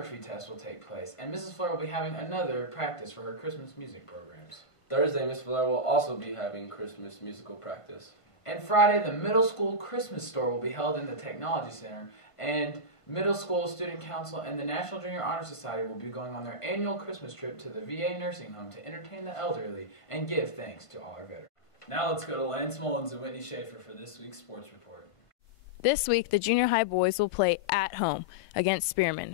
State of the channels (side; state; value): right; late; 1.5 ms